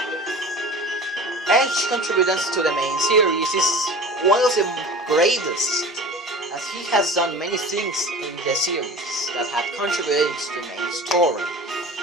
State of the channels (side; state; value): both; normal; correlation 0.37